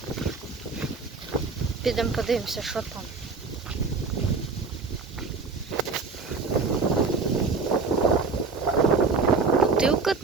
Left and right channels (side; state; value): left; quieter; 4.4 dB